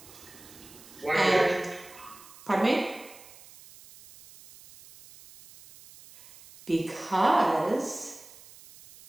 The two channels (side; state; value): right; noise; hiss, 21 dB below the sound